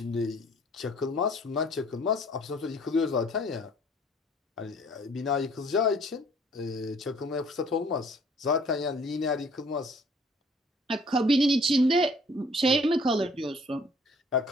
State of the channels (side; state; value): both; normal; correlation 0.56